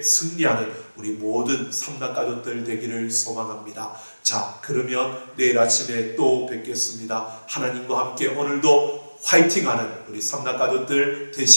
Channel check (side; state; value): both; inverted; correlation -1.00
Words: 승리하는 우리 모든 삼단가족들 되기를 소망합니다. 자, 그러면 내일 아침에 또 뵙겠습니다. 하나님과 함께 오늘도 화이팅하는 우리 삼단가족들